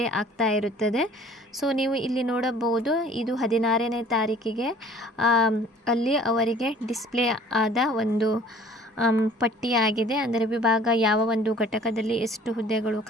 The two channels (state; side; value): normal; both; correlation 0.51